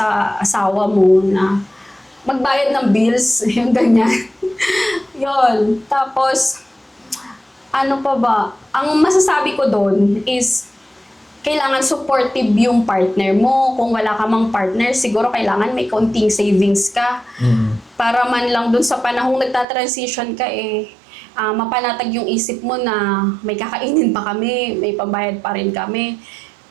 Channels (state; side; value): drops out; left; at 19.7 s